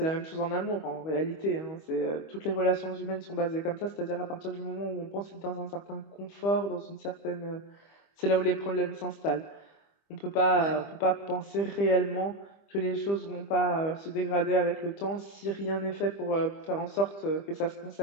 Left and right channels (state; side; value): late; right; 25 ms